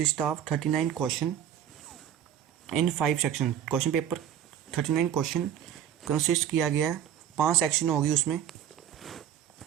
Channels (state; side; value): quieter; left; 9.9 dB